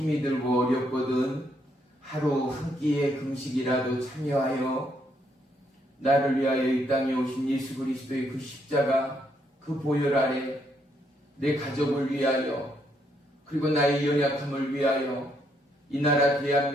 들고 어렵거든 하루 한 끼의 금식이라도 참여하여 나를 위하여 이 땅에 오신 예수 그리스도의 그 십자가, 그 보혈 아래 내 가족을 위하여, 그리고 나의 연약함을 위하여 이 나라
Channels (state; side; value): normal; both; correlation 0.74